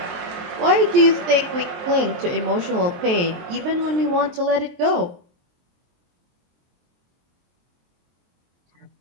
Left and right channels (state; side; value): late; left; 23 ms